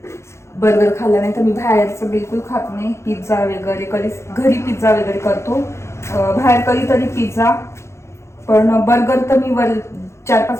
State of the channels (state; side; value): late; right; 0.13 ms